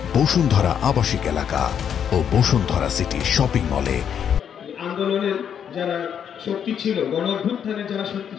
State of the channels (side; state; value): right; quieter; 8.3 dB